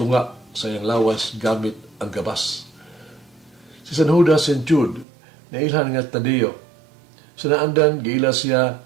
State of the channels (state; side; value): drops out; left; at 5.1 s